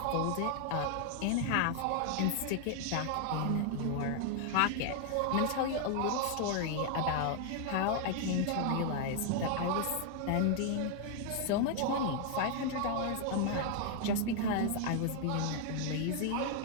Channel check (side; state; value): both; different; correlation 0.00